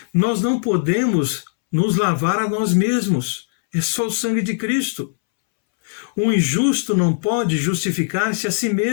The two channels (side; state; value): right; silent; 66 dB below the other